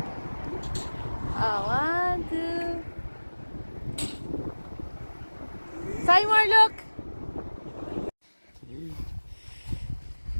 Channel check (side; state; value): both; inverted; correlation -1.00